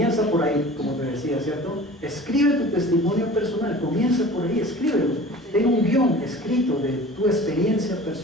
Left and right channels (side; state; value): both; normal; correlation 0.42